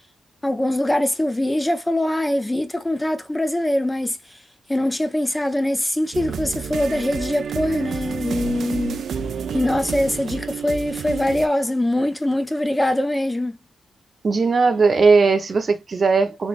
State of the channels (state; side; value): normal; both; correlation 0.93